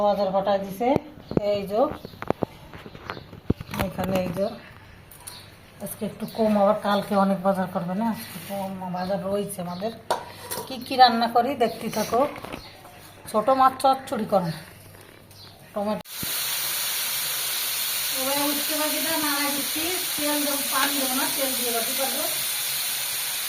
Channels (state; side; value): identical; both; correlation 1.00